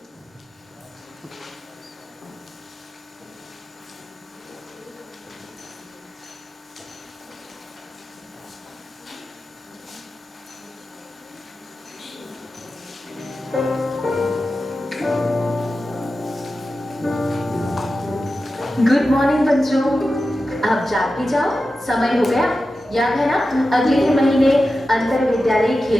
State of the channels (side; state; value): both; normal; correlation 0.92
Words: Good morning बच्चों, अब जाग भी जाओ, समय हो गया। याद है ना, अगले ही महीने अंतर विद्यालय